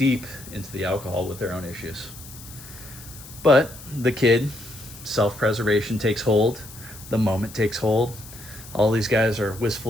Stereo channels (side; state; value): left; noise; hiss, 17 dB below the sound